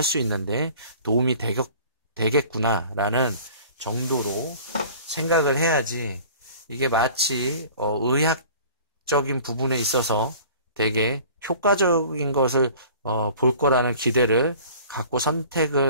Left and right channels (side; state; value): both; inverted; correlation -0.46